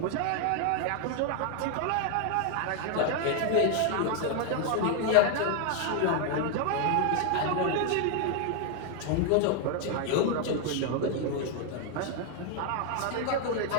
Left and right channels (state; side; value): different; both; correlation 0.00